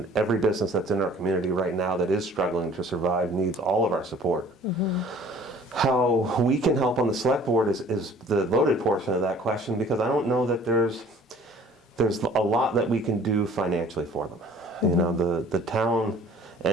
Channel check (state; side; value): normal; both; correlation 0.51